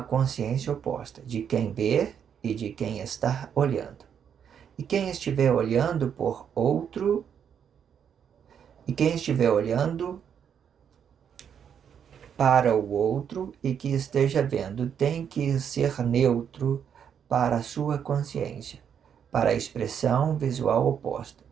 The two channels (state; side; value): quieter; left; 8.1 dB